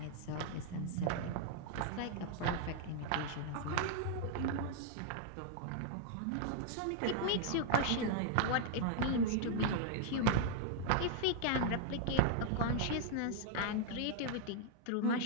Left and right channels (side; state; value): both; different; correlation 0.00